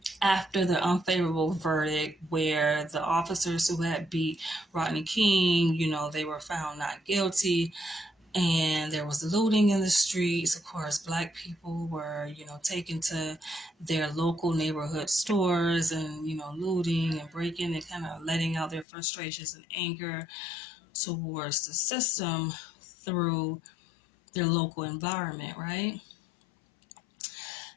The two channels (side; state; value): right; drops out; at 18.9 s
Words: after the unfavorable verdict, where the officers who had beat Rodney King, they were found not guilty, and there was looting in the streets. Of course, Black people were, taken to their local neighborhood stores and, looting and breaking and kind of letting out their frustrations and anger towards the system through their local environment, right?